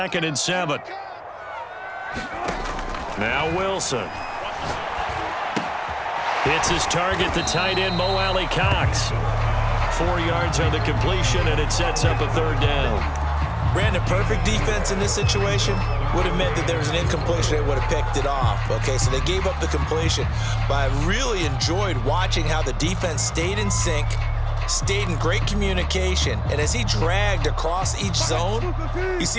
and 7. Now Wilson. Hits his target, the tight end, Mo Alley Cox. 4 yards on the completion, and it sets up a 3rd down. Brandon, perfect defense in this situation would have meant that there was an incompletion. They would have picked it off. Okay, so they gave up the completion. But I really enjoyed watching how the defense stayed in sync, stayed in great communication. And as he dragged across each zone, you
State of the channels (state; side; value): identical; both; correlation 1.00